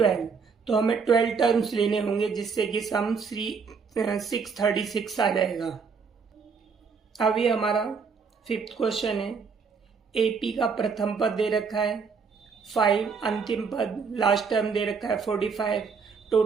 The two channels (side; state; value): left; quieter; 5.5 dB